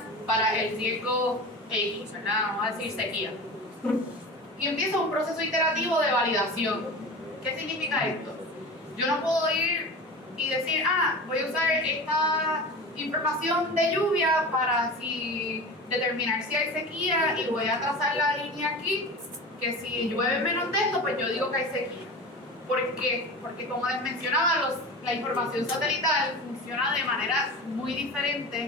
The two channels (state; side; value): normal; both; correlation 0.32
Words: para el riesgo X, ¿verdad? Vamos a decir sequía. Y empieza un proceso iterativo de validación. ¿Qué significa esto? Yo no puedo ir y decir, voy a usar esta información de lluvia para determinar si hay sequía y voy a trazar la línea aquí, que si llueve menos de esto, pues yo digo que hay sequía. ¿Por qué? Porque como les mencionaba, la información satelital funciona de manera muy